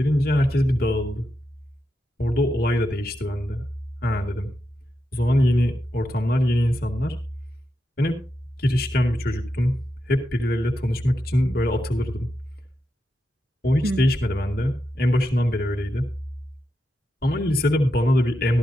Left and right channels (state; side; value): normal; both; correlation 0.86